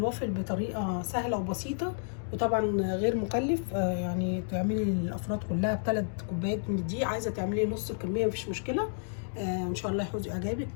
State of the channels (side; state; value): right; silent; digital silence